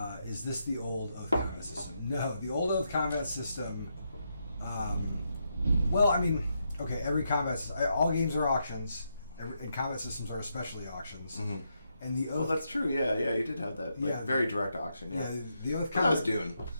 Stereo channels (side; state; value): both; inverted; correlation -0.81